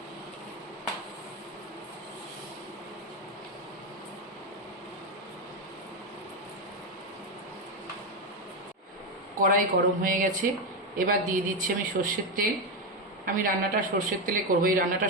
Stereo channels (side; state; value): both; normal; correlation 0.10